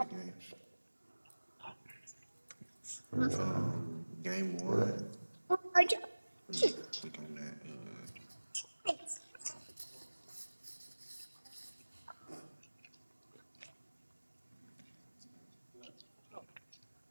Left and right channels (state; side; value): inverted; both; correlation -1.00